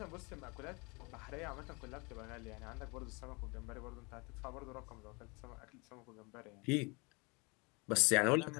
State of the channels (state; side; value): quieter; right; 28.6 dB